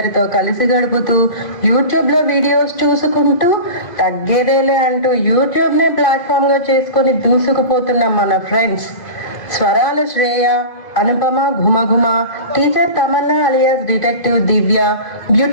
కలిసి గడుపుతూ యూట్యూబ్ లో వీడియోస్ చూసుకుంటూ తగ్గేదేలే అంటూ యూట్యూబ్ నే ప్లాట్ఫామ్ గా చేసుకుని దూసుకుపోతున్న మన ఫ్రెండ్స్ స్వరాల శ్రేయ, అనుపమ ఘుమఘుమ, teacher Tamanna alias detective Divya,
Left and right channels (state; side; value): late; right; 2.5 ms